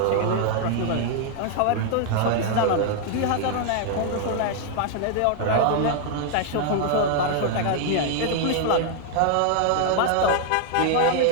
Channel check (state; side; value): different; both; correlation 0.00